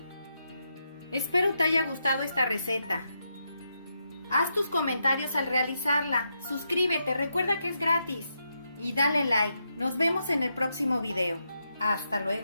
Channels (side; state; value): both; inverted; correlation -0.83